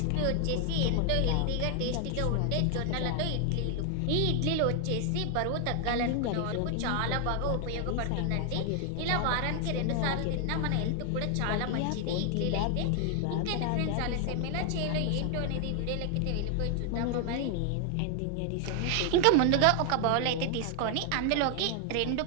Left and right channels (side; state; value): both; different; correlation 0.00